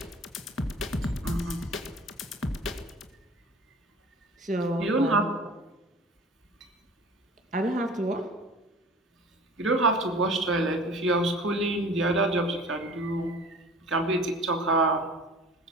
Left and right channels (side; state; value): both; normal; correlation 0.43